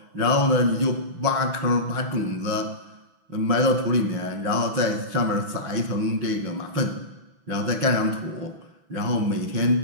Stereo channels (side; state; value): left; late; 6.0 ms